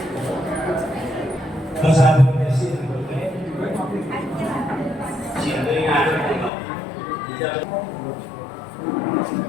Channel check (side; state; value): right; drops out; at 6.5 s